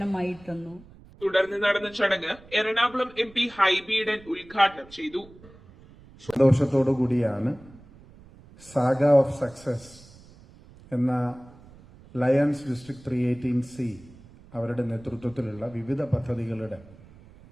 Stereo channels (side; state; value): right; noise; rumble, 23 dB below the sound